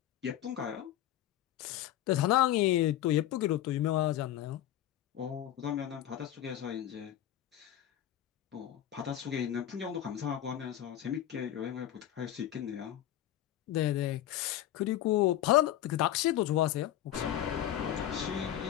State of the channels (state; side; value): quieter; right; 12.2 dB